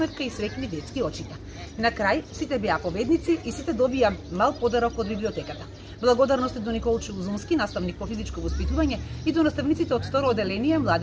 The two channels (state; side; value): identical; both; correlation 1.00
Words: и среќни детски очита. На крај сите беа победници и сите добија мал подарок од библиотеката. Благодарности до Николчо Узунски, наставник по физичко воспитување, и до наставниците од второ оделение